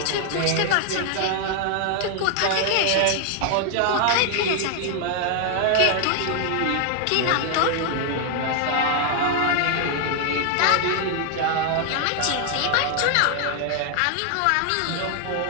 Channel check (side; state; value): both; different; correlation 0.00